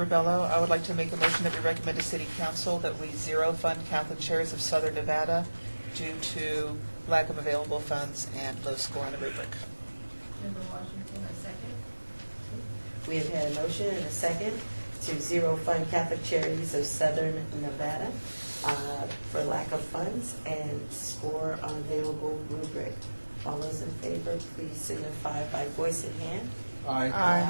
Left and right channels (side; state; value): both; inverted; correlation -1.00